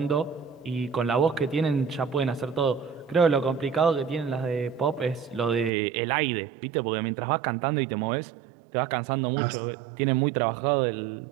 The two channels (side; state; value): left; drops out; at 5.7 s